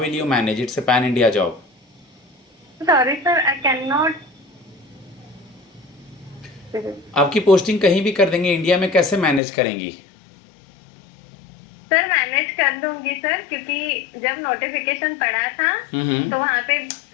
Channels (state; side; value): drops out; right; at 9.4 s